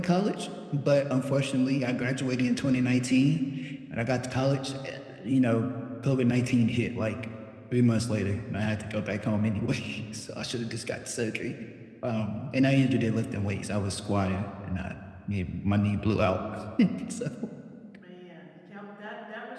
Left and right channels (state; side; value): identical; both; correlation 1.00